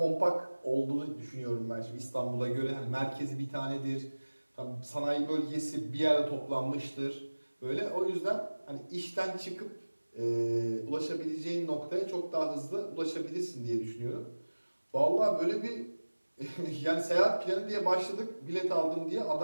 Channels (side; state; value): both; inverted; correlation -1.00